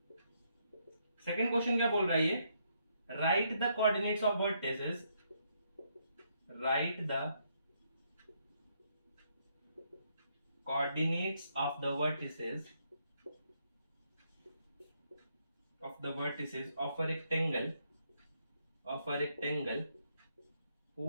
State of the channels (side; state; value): both; inverted; correlation -0.75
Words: सेकंड क्वेश्चन क्या बोल रहा है ये, right the coordinates of vertices, right the coordinates of the vertices of a rectangle